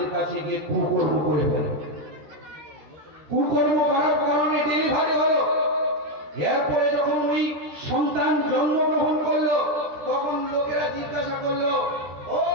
কাছে গিয়ে কুকর্ম করে ফেলে। কুকর্ম করার কারণে ডেলিভারি হলো। এরপরে যখন ওই সন্তান জন্মগ্রহণ করলো, তখন লোকেরা জিজ্ঞাসা করলো, ও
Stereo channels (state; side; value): late; left; 13 ms